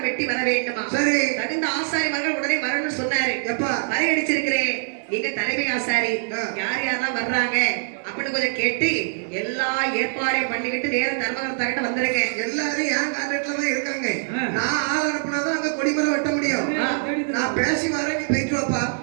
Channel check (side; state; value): left; silent; digital silence